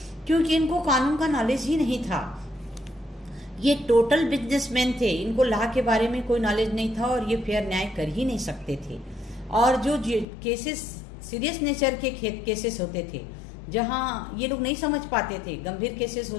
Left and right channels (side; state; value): right; drops out; at 10.2 s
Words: क्योंकि इनको कानून का नॉलेज ही नहीं था। ये टोटल बिजनेसमैन थे, इनको लॉ के बारे में कोई नॉलेज नहीं था और ये फेयर न्याय कर ही नहीं सकते थे। और जो केसेस सीरियस नेचर के केसेस होते थे, जहां ये लोग नहीं समझ पाते थे, गंभीर केसेस